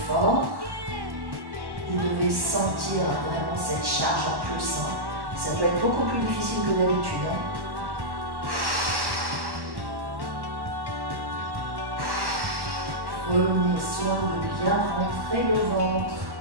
Vous devez sentir vraiment cette charge en plus. Ça peut être beaucoup plus difficile que d'habitude. Prenez soin de bien rentrer le ventre.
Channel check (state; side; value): late; left; 1.1 ms